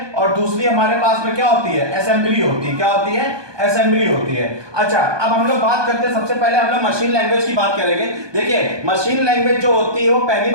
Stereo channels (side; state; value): left; late; 1.2 ms